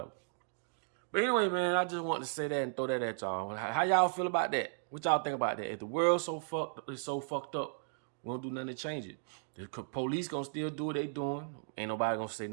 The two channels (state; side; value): silent; left; digital silence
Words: But anyway, man, I just wanted to say that and throw that at y'all. How y'all feel about that? What y'all think about that? If the world's so fucked up, we don't do nothing to change it. The police gonna still do what they doing. Ain't nobody gonna say